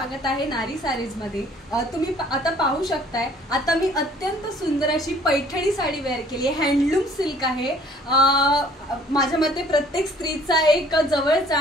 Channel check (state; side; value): normal; both; correlation 0.56